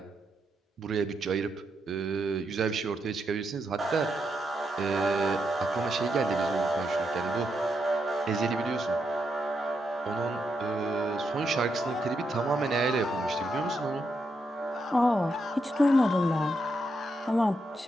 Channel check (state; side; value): normal; both; correlation 0.82